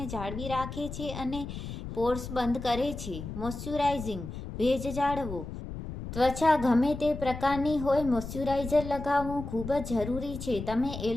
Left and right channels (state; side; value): noise; left; rumble, 8 dB below the sound